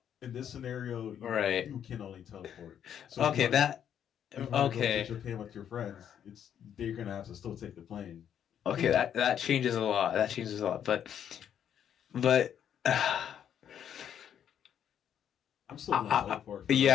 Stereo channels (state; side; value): quieter; right; 9.3 dB